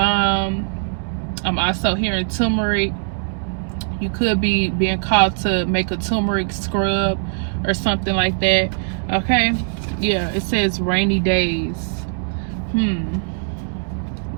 I'm also hearing turmeric. You could be being called to make a turmeric scrub or something like that. Okay, yeah, it says rainy days.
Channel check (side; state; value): left; silent; digital silence